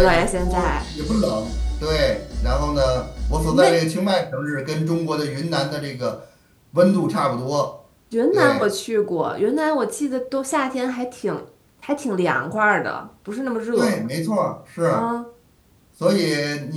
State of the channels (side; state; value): both; identical; correlation 1.00